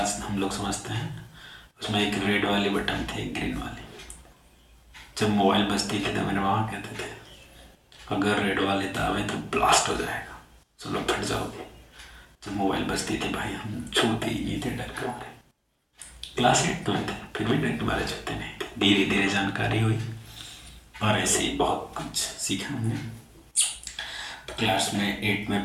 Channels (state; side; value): identical; both; correlation 1.00